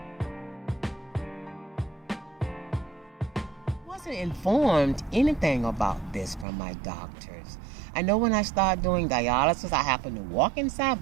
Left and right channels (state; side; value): drops out; left; at 6.5 s